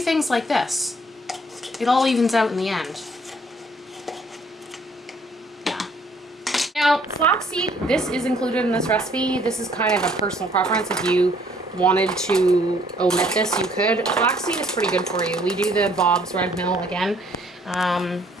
like this. It all evens out in the end. Now, flaxseed, this is included in this recipe. This is kind of a personal preference. If you wanted to omit this, you could. Flaxseed is pretty good for you. We do the Bob's Red Mill again.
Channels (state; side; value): normal; both; correlation 0.62